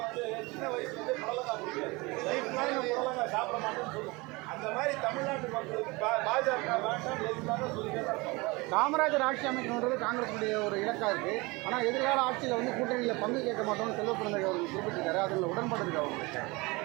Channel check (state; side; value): quieter; left; 24.6 dB